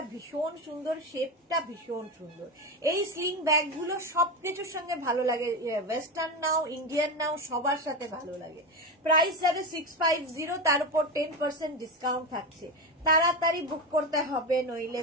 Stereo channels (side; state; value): both; normal; correlation 0.17